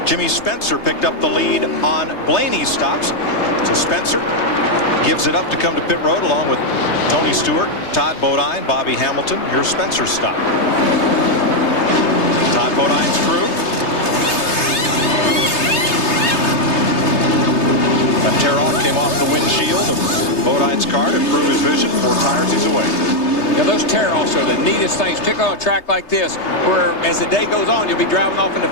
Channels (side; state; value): right; late; 3.3 ms